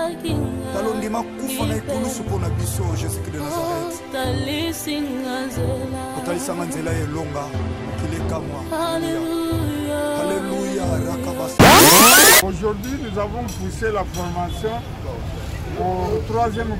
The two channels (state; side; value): identical; both; correlation 1.00